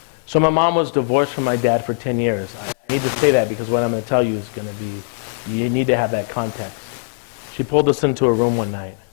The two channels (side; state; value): right; silent; 62 dB below the other